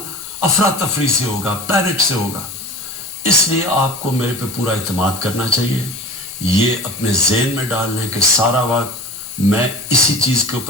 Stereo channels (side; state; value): both; normal; correlation 0.37